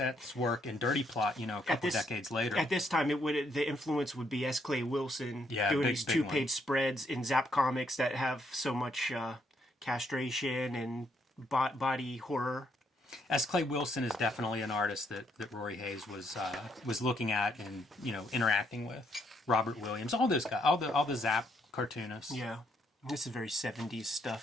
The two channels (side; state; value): both; normal; correlation 0.73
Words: work in Dirty Plot, a couple decades later. At this time, the influence would be S. Clay Wilson doing these big 2-page spreads in Zap Comics that have so much castration and body horror. S. Clay Wilson is definitely an artist that Rory Hayes was looking at and interacting with. Robert Williams, all those guys, all the Zap cartoonists. Yeah. This is very 70s